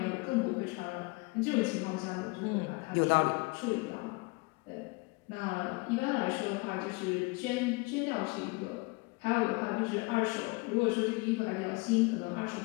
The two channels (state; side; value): quieter; right; 26.9 dB